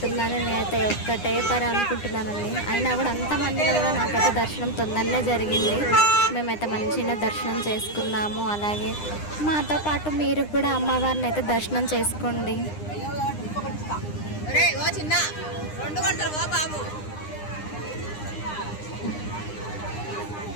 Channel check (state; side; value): late; right; 9.8 ms